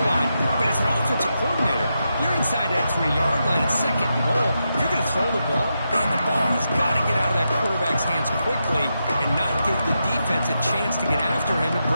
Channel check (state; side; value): inverted; both; correlation -0.86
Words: line. But as an offensive coordinator, you're inside that 3-yard line at 2nd and goal. If you're going to throw the ball, man, the ball has got to get out of that quarterback's hands quickly and not give the defense a chance to get after him and